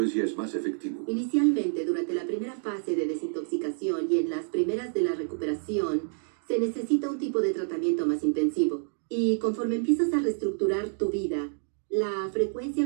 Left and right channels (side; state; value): left; silent; digital silence